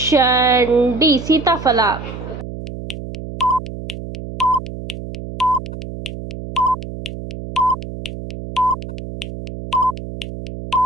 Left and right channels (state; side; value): noise; right; hum, 10 dB below the sound